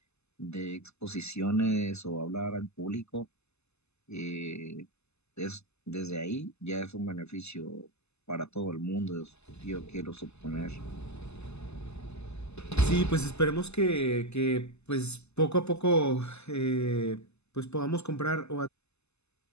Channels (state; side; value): late; right; 0.80 ms